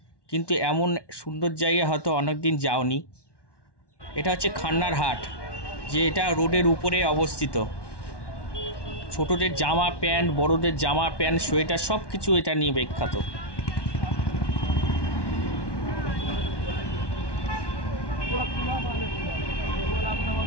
কিন্তু এমন সুন্দর জায়গা হয়তো অনেক দিন যাওনি। এটা হচ্ছে খান্নারহাট, যে এটা রোডের উপরে অবস্থিত। ছোটদের জামা প্যান্ট, বড়দের জামা প্যান্ট, সোয়েটার সব কিছু এটা নিয়ে বিখ্যাত।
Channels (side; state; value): right; late; 1.1 ms